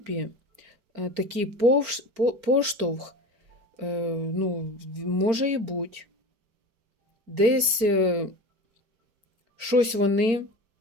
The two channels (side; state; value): left; late; 4.4 ms